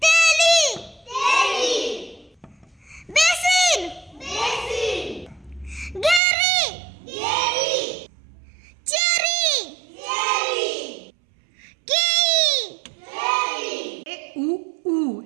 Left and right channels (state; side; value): drops out; left; at 6.2 s